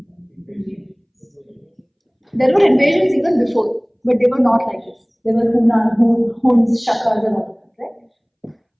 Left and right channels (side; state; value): both; identical; correlation 1.00